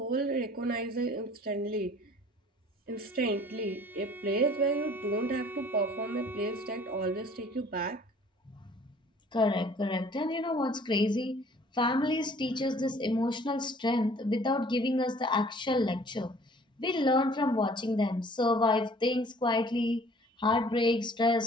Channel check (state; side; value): normal; both; correlation 0.53